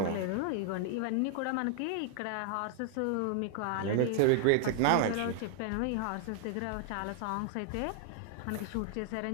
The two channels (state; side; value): different; both; correlation 0.00